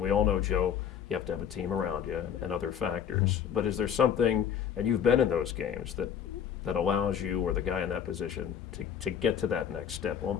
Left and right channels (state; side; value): quieter; right; 8.6 dB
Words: we all know, Joe, you have to have a team around you and other factors. But is there something, and you've been in those games, that allows you or the guy in that position to get to that next step? Well,